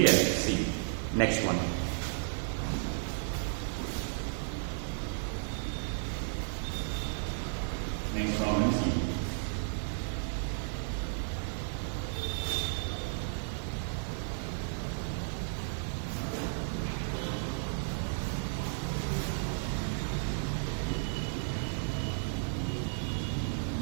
See. Next one. Next problem C.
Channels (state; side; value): silent; left; digital silence